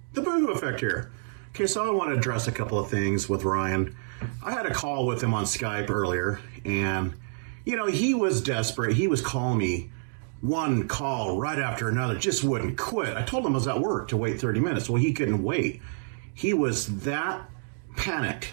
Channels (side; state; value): left; silent; digital silence